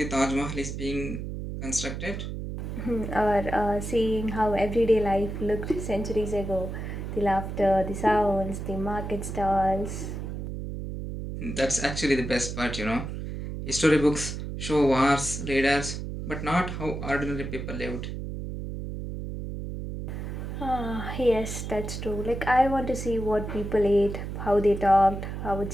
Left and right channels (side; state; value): right; noise; hum, 6 dB below the sound